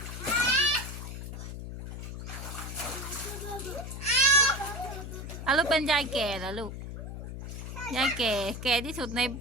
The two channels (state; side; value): noise; left; hum, 8 dB below the sound